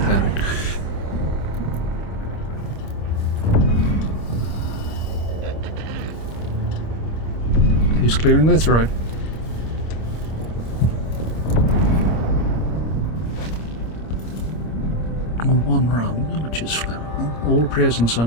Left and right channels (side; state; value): right; late; 26 ms